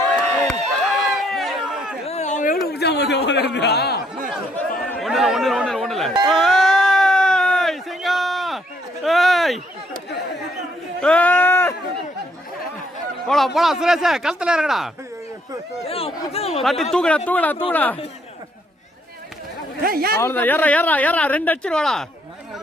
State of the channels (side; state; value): both; normal; correlation 0.69